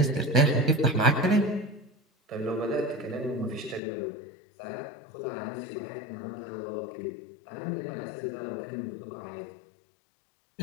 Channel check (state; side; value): drops out; right; at 3.8 s